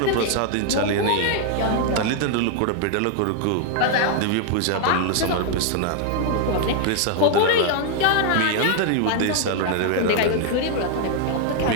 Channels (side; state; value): both; different; correlation 0.00